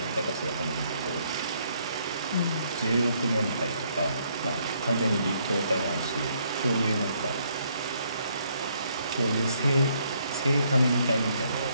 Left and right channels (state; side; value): inverted; both; correlation -0.70